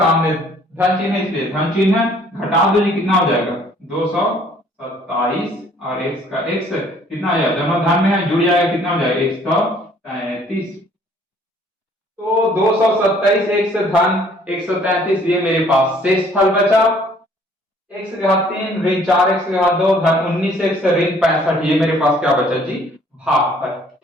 धन चिन्ह है इसलिए धन चिन्ह है, घटा दो जी कितना हो जाएगा 227 और x का x कितना आ जाएगा, दोनों धन में है जुड़ जाएगा कितना हो जाएगा 133, तो 227 x धन 133 ये मेरे पास शेष फल बचा। x के घात 3 ऋण 4x के घात 2 धन 19x ऋण 65, ये मेरे पास क्या बचा जी, भागफल।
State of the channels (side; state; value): both; normal; correlation 0.59